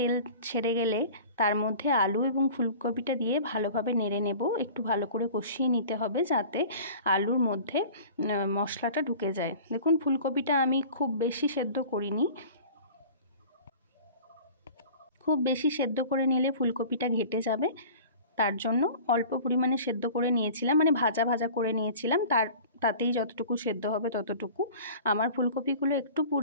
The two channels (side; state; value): both; inverted; correlation -0.42